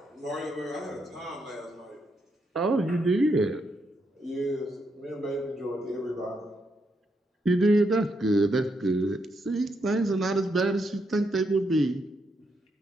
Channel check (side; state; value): both; normal; correlation 0.79